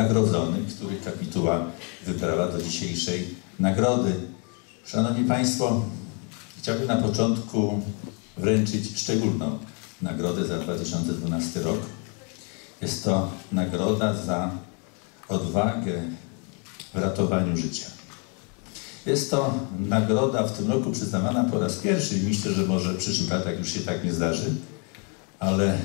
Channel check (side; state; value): right; quieter; 36.4 dB